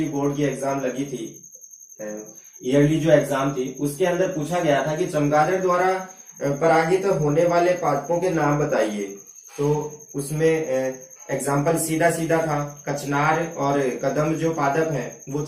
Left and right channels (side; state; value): both; identical; correlation 1.00